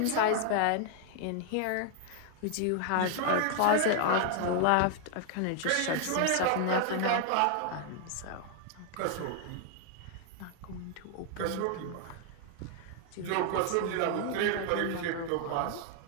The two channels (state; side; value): different; both; correlation 0.00